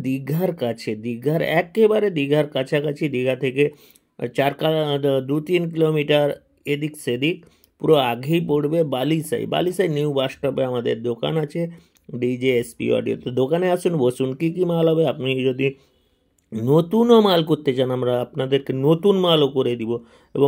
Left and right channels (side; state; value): both; identical; correlation 1.00